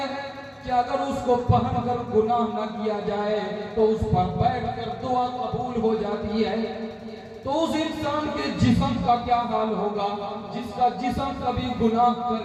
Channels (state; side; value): identical; both; correlation 1.00